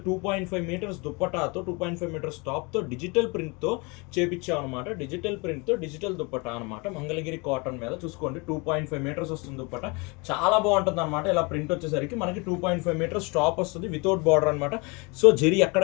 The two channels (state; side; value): quieter; right; 28.8 dB